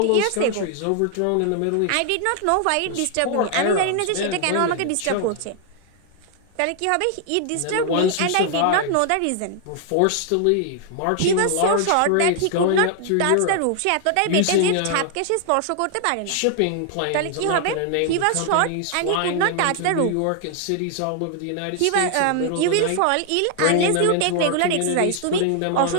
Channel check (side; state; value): both; different; correlation 0.00